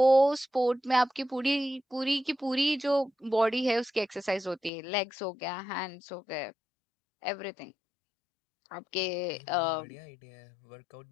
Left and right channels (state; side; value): drops out; right; at 4.7 s